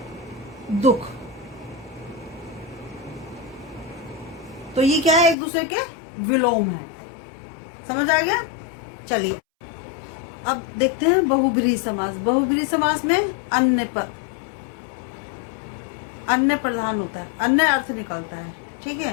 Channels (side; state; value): right; drops out; at 5.4 s